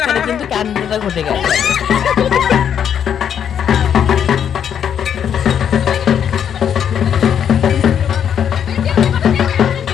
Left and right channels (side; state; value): right; quieter; 8.6 dB